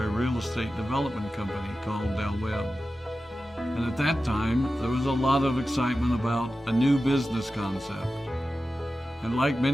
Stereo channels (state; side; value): normal; both; correlation 0.94